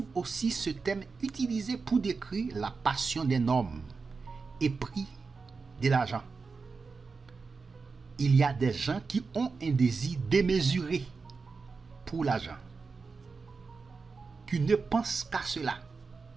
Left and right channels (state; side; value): quieter; left; 4.6 dB